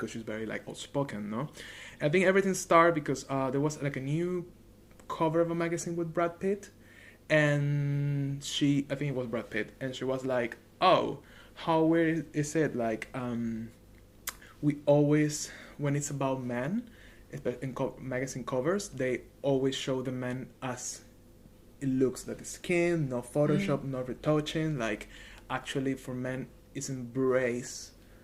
she's very outspoken, no? I think everything started because there was a new cover of a magazine with Brad Pitt, and I think it was Brad Pitt, and she was like, oh, how weird is it, we always, when it's about men, in magazine covers, they always show the men as it looks, the skin, no Photoshop, no retouching. Actually, for men, it's embraced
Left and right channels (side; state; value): both; identical; correlation 1.00